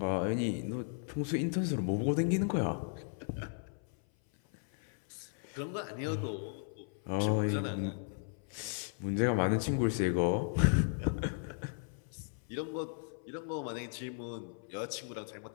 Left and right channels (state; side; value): silent; right; 54 dB below the other